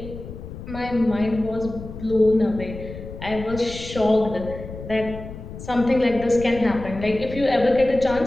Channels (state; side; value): noise; left; rumble, 12 dB below the sound